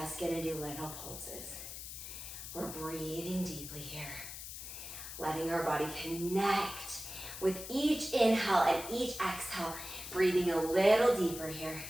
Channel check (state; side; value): noise; left; hiss, 9 dB below the sound